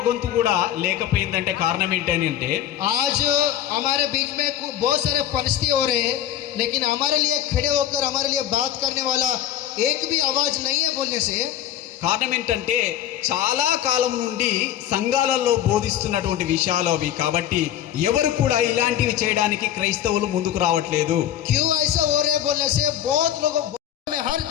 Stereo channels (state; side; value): quieter; right; 11.1 dB